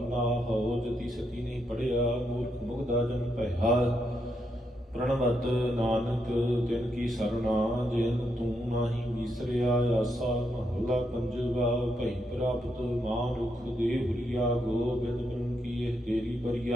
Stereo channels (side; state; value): both; normal; correlation 0.80